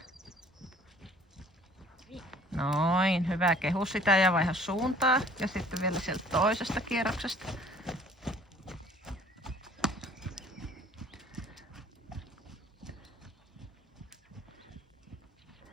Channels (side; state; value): both; normal; correlation 0.53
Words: Noin, hyvä. Kehu sitä ja vaiha suuntaa. Ja sitten vielä sieltä toisesta kierroksesta.